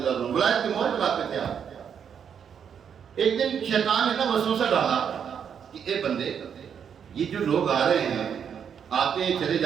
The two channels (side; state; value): left; quieter; 7.7 dB